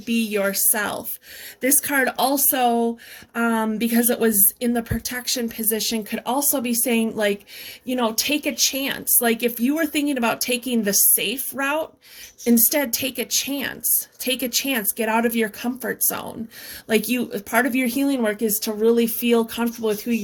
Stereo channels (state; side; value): identical; both; correlation 1.00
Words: yourself. This card also, because it was in the protection position, could also be saying, like, you know, take a chance. Like if you were thinking about taking the safe route, instead take a chance. Take a chance. Get out of your comfort zone. Like part of your healing work is to really feel comfortable with who